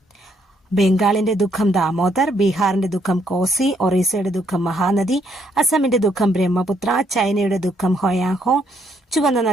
ബംഗാളിന്റെ ദുഃഖം ദാമോദർ, ബീഹാറിന്റെ ദുഃഖം കോസി, ഒറീസയുടെ ദുഃഖം മഹാനദി, അസമിന്റെ ദുഃഖം ബ്രഹ്മപുത്ര, ചൈനയുടെ ദുഃഖം ഹോയാഹോ, ചുവന്ന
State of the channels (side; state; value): both; normal; correlation 0.71